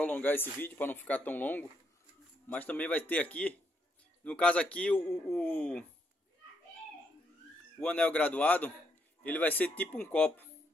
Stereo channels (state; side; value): normal; both; correlation 0.76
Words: esse vídeo para não ficar tão longo, mas também vai ter aqui, no caso aqui, o anel graduado, ele vai ser tipo um copo.